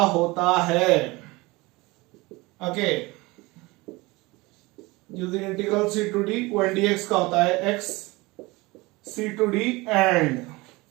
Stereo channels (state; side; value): quieter; left; 22.7 dB